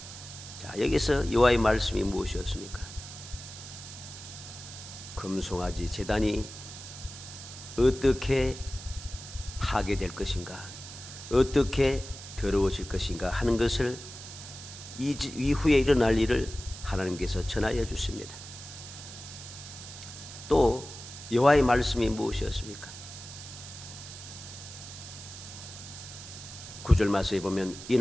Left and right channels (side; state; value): right; noise; hiss, 13 dB below the sound